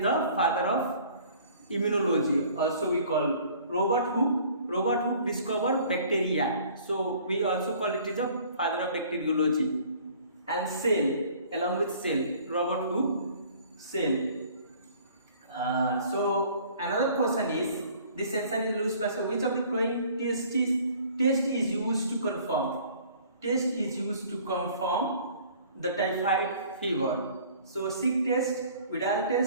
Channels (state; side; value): inverted; both; correlation -0.52